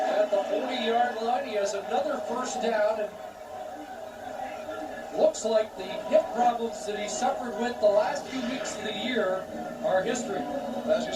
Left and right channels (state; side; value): identical; both; correlation 1.00